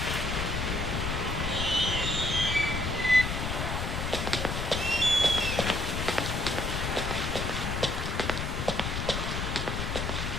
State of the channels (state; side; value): noise; left; rumble, 2 dB below the sound